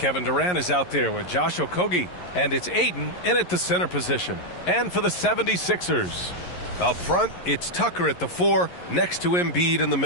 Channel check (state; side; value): late; right; 11 ms